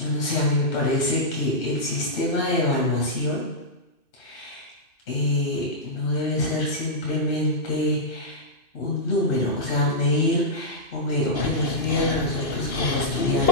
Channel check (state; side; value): late; right; 2.6 ms